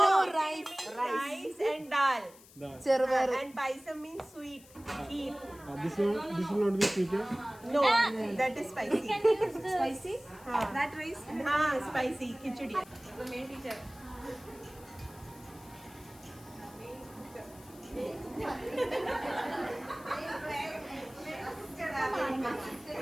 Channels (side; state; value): left; noise; hiss, 23 dB below the sound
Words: rice. Rice and dal. Chervaru. And paisam means sweet. Kheer. This will not be sweet. No, that is spicy. Spicy? That rice? Spicy khichdi. The main teacher.